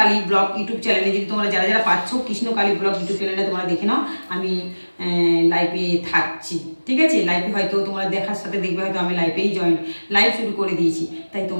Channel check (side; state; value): both; inverted; correlation -1.00